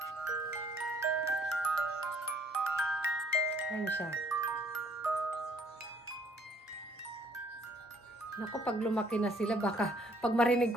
Ayan siya. Naku, pag lumaki na sila, baka pag marinig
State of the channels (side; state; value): both; normal; correlation 0.62